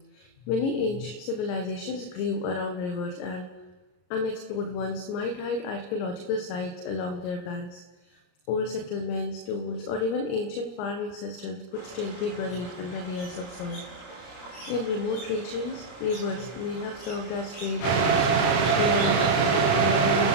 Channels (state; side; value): late; right; 34 ms